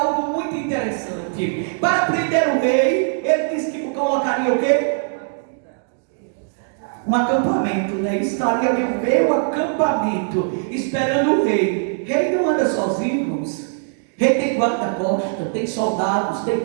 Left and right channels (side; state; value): left; silent; digital silence